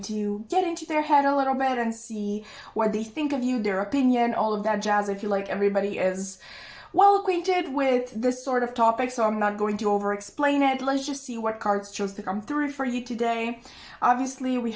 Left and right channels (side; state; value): both; identical; correlation 1.00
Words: to get into their head a little bit and see what they think of you, their opinion, all of that jazz. I feel like everybody is well acquainted with this sort of topic, so I'm not going to over-explain it. Let's just see what cards chose to come through for you today. Obviously, we